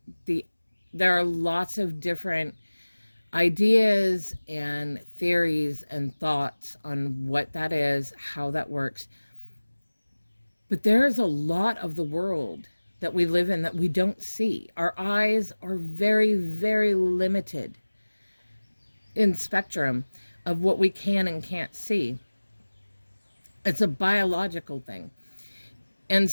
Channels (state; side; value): inverted; both; correlation -1.00